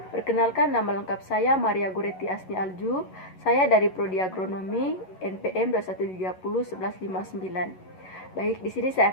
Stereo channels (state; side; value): late; right; 11 ms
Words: Perkenalkan, nama lengkap saya Maria Goretti Asni Alju. Saya dari Prodi Agronomi NPM 2130-1159. Baik, di sini saya